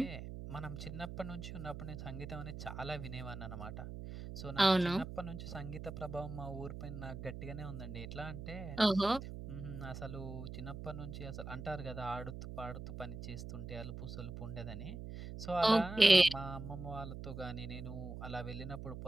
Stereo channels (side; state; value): right; noise; hum, 8 dB below the sound